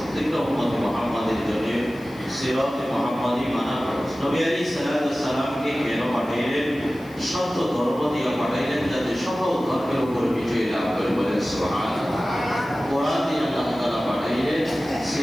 উম্মত মুহাম্মাদের জন্য সিরাত মুহাম্মাদি মানা ফরজ। নবী আলাইহিস সালাতু ওয়াস সালামকে কেন পাঠাইলেন? সত্য ধর্ম দিয়ে পাঠাইলেন, যাতে সকল ধর্মের উপর বিজয় লাভ করে। বলেন সুবহানাল্লাহ। কোরআন দিয়ে আল্লাহ তাআলা পাঠাইলেন।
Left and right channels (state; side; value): noise; left; hiss, 26 dB below the sound